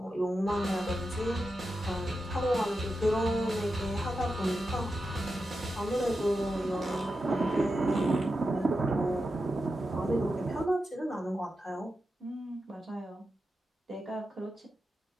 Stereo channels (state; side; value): normal; both; correlation 0.89